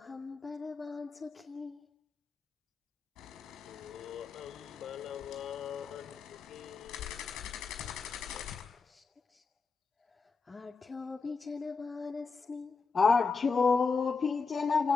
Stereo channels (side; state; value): right; quieter; 4.8 dB